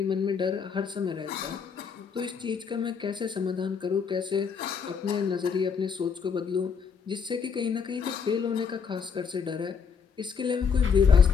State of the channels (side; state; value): right; quieter; 6.3 dB